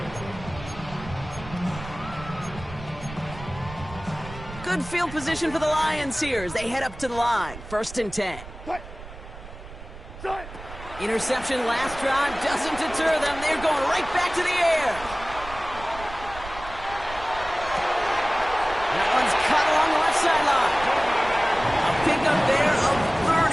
Good field position for the Lions here as they head up to the line. 1st and 10. Interception last drive doesn't deter them. They're going right back to the air. That one's cut along the left sideline. A pickup there of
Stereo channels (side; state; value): right; noise; rumble, 14 dB below the sound